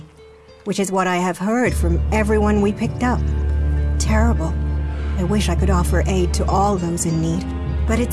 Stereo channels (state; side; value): identical; both; correlation 1.00